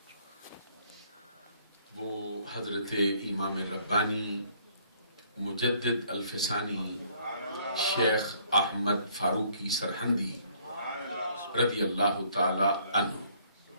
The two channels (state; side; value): inverted; both; correlation -0.62